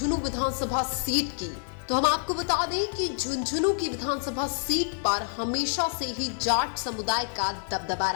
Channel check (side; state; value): right; silent; digital silence